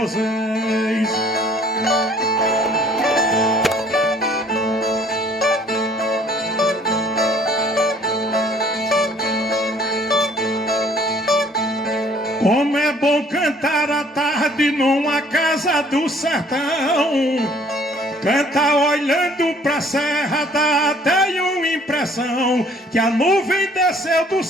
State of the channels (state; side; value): normal; both; correlation 0.57